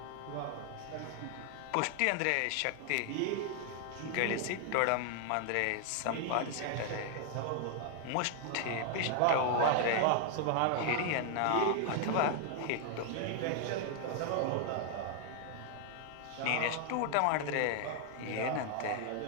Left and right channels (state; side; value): different; both; correlation 0.00